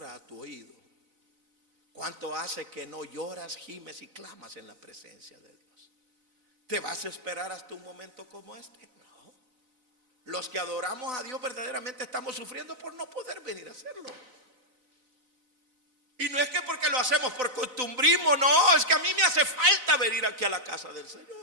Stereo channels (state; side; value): late; left; 4.0 ms